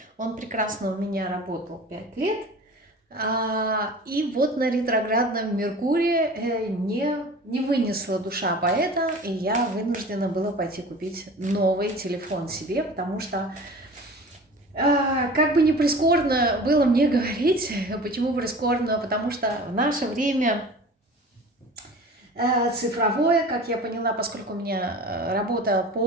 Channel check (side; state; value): both; normal; correlation 0.40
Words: Он прекрасно у меня работал 5 лет. И вот на ретроградном Меркурии не вынесла душа поэта, и я вынуждена была пойти купить новый телефон себе, потому что, как бы ни прискорбно было мне говорить, почему прискорбно, потому что в наше время цифровое, как я поняла, поскольку у меня работа